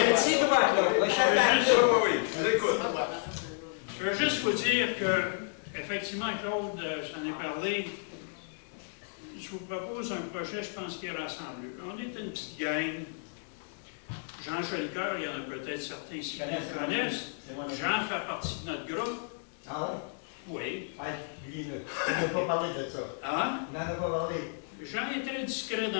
petit doigt, Claude. Je veux juste vous dire que, effectivement, Claude, j'en ai parlé. Je vous propose un projet, je pense, qui est rassembleux. On est une petite gang. Jean Jolicoeur, il y en a peut-être certains ici qui le connaissent. Jean fait partie de notre groupe. Ah Oui. ouais? Dis-le. On n'a pas parlé de ça. Ah? On n'en a pas parlé. Jean est très discret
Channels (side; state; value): right; silent; digital silence